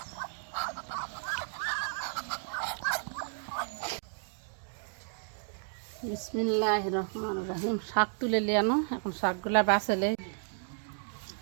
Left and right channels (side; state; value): left; silent; 56 dB below the other